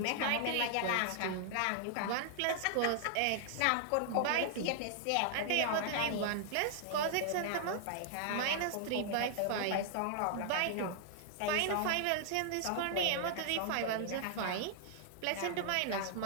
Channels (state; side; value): different; both; correlation -0.01